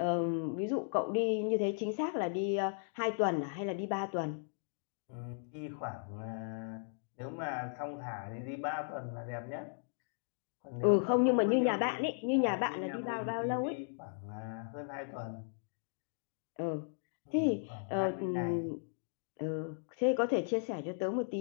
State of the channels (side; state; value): right; silent; digital silence